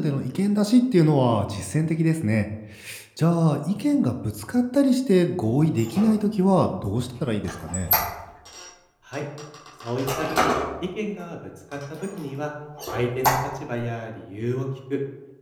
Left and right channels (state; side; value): identical; both; correlation 1.00